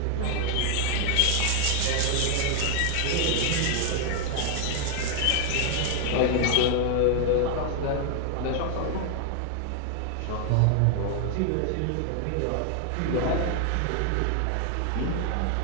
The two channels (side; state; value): both; different; correlation 0.00